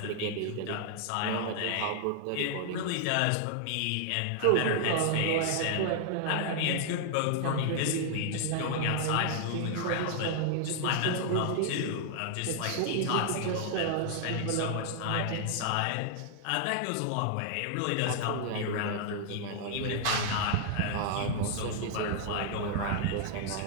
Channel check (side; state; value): both; different; correlation 0.00